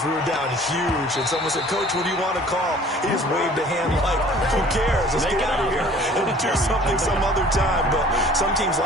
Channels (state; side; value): normal; both; correlation 0.50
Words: We were down huge, and someone said, "Coach, what do you want to call?" He just waved a hand like, "Who cares? Let's get out of here and do something some other time." But some teams